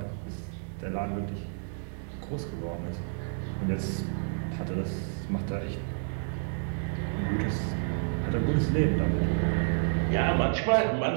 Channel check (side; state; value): left; silent; digital silence